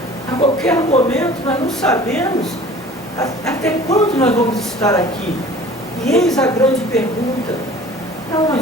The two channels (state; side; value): normal; both; correlation 0.46